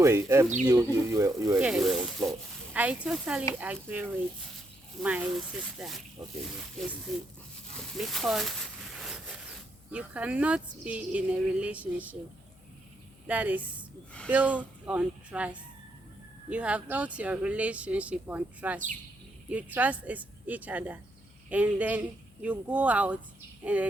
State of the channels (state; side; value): noise; left; hum, 27 dB below the sound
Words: you were Yes, on floor. I totally agree with my sister, Okay. Christy, because you cannot be in a relationship that is built on trust. You have built your relationship on trust. You trust each other, and then you go out, and